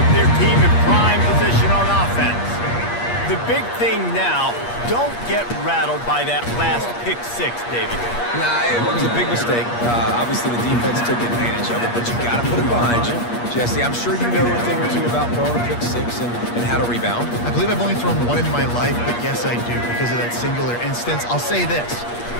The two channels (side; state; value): right; late; 8.4 ms